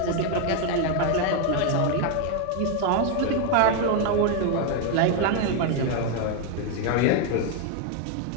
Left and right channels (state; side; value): different; both; correlation 0.01